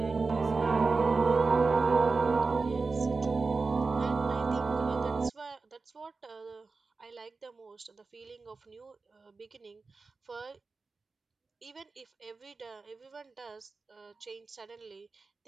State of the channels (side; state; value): left; quieter; 4.1 dB